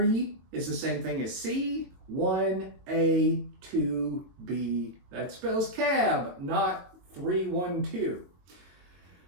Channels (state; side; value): late; left; 22 ms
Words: is the same thing as C, 1, A, 2, B. That spells cab, not 312.